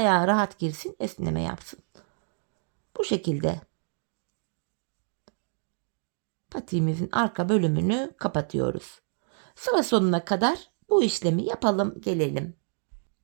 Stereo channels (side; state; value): left; silent; digital silence